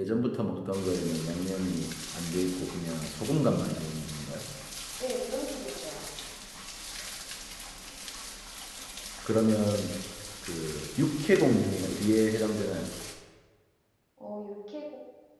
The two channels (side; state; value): both; identical; correlation 1.00